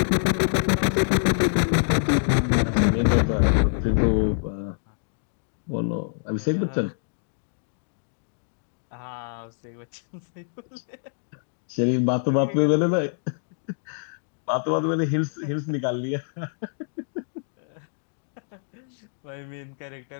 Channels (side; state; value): right; silent; digital silence